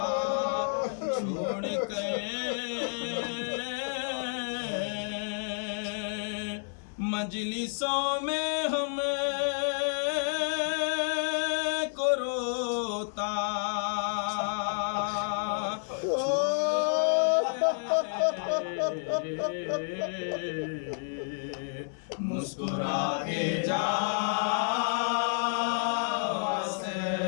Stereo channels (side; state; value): right; silent; 58 dB below the other